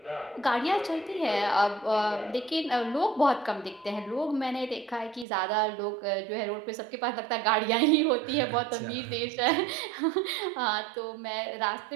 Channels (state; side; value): drops out; left; at 5.2 s